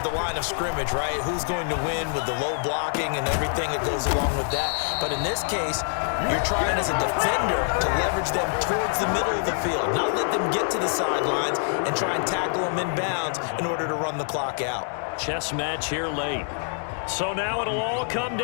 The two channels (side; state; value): right; silent; digital silence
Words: the line of scrimmage, right? Who's going to win with the low blocking and everything that goes along with that. But in this case, you're trying as a defender to leverage them towards the middle of the field, not let them get to the sidelines and try and tackle them in bounds in order to run the clock out. Chess match here late. So now it'll all come